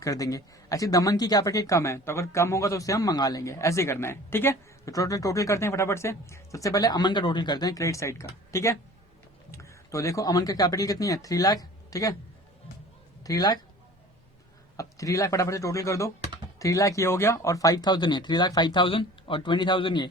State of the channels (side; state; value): both; normal; correlation 0.45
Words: देंगे। ऐसे दमन की कैपिटल कम है, तो अगर कम होगा तो उसे हम मंगा लेंगे, ऐसे करना है, ठीक है। तो टोटल करते हैं फटाफट से। सबसे पहले अमन का टोटल करते हैं, क्रेडिट साइड का, ठीक है। तो देखो अमन का कैपिटल कितनी है, 3 लाख, ठीक है, 3 लाख। अब 3 लाख फटाफट से टोटल कर दो, 3 लाख ये हो गया, और 5,000 ये, 3 लाख 5,000 और 20,000 ये,